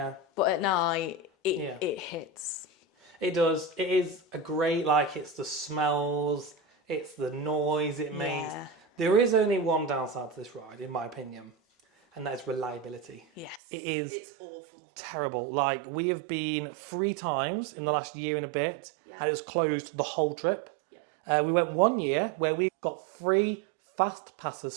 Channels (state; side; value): drops out; left; at 13.6 s